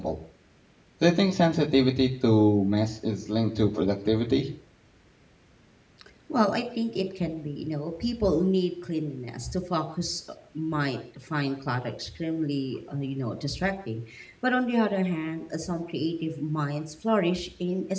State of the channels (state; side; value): identical; both; correlation 1.00